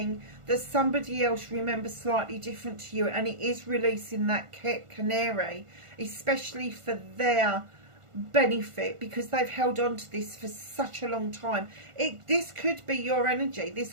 that somebody else remembers slightly different to you, and it is releasing that canary, especially for their benefit, because they've held on to this for such a long time. This could be your energy.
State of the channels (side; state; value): left; late; 1.5 ms